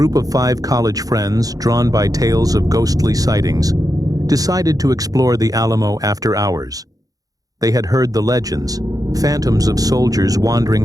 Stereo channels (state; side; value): late; left; 0.17 ms